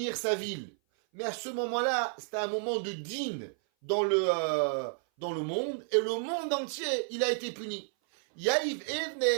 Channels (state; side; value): silent; left; 56 dB below the other